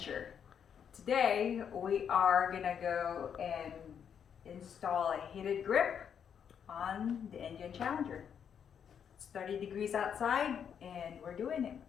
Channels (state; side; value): quieter; right; 7.9 dB